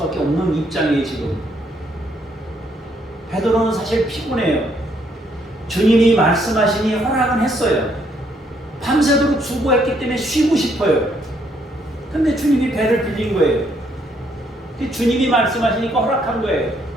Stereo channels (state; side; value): normal; both; correlation 0.71